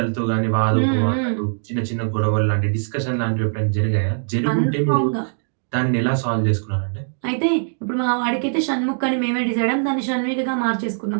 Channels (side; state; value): left; silent; digital silence